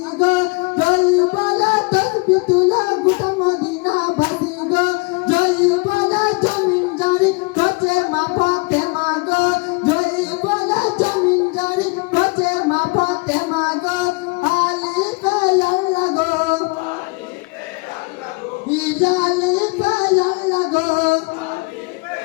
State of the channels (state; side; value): quieter; right; 28.5 dB